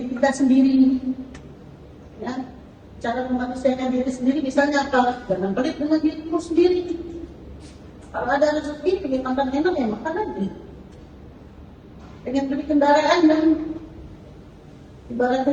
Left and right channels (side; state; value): both; identical; correlation 1.00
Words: kita sendiri, ya, cara memanusiakan diri sendiri misalnya apa? Jangan pelit dengan dirimu sendiri. Kalau ada rezeki, pengen makan enak ya makan aja. Pengen beli kendaraan dan